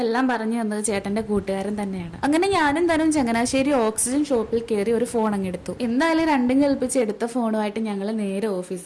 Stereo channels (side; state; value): both; identical; correlation 1.00